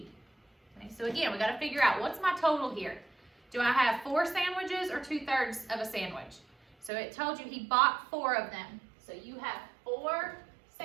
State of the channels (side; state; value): left; drops out; at 6.9 s